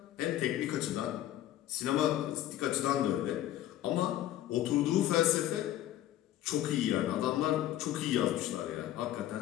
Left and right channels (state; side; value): quieter; right; 13.1 dB